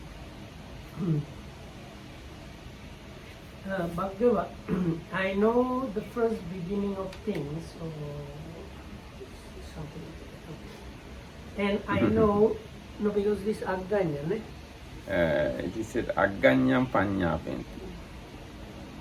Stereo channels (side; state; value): both; identical; correlation 1.00